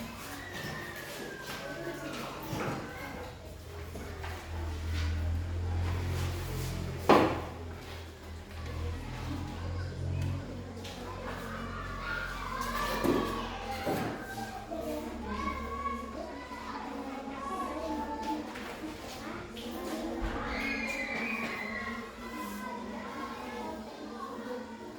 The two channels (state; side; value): identical; both; correlation 1.00